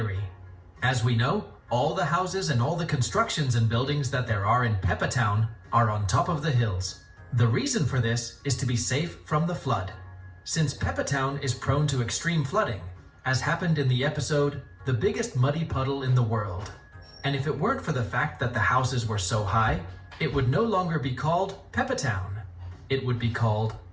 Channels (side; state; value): both; identical; correlation 1.00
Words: As we know, all the houses and all the constructions and buildings that there are in Peppa Town are on top of the hills. The reason for this is to be safe from the flood, since Peppa Town is prone to extreme flooding, as happened in the episode The Biggest Muddy Puddle in the World. And if it weren't for the fact that the houses were so high, it would no longer be called Peppa Town. It would be called